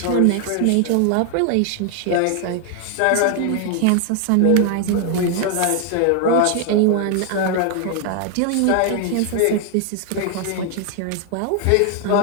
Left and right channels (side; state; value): both; different; correlation 0.00